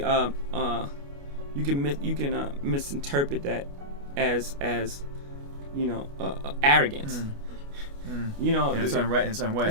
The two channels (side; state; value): left; late; 29 ms